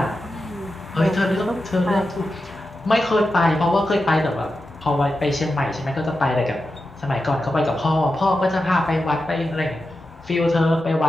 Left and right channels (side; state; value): both; normal; correlation 0.91